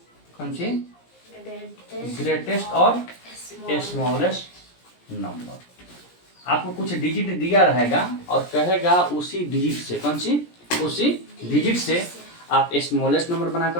कौन सी, ग्रेटेस्ट और स्मॉलेस्ट नंबर। आपको कुछ डिजिट दिया रहेगा और कहेगा उसी डिजिट से, कौन सी, उसी डिजिट से आप स्मॉलेस्ट नंबर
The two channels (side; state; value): right; late; 17 ms